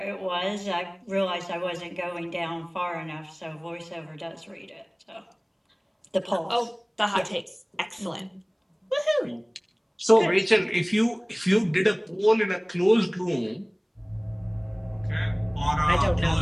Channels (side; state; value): both; identical; correlation 1.00